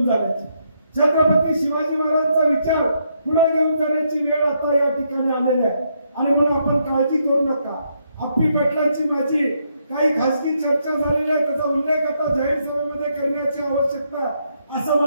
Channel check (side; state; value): both; inverted; correlation -0.76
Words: जाण्याची, छत्रपती शिवाजी महाराजांचा विचार पुढे घेऊन जाण्याची वेळ आता या ठिकाणी आलेली आहे. आणि म्हणून आपण काळजी करू नका. अप्पी पाटलांची माझी काही खासगी चर्चा झालेली आहे, त्याचा उल्लेख आता जाहीर सभेमध्ये करण्याची आवश्यकता असं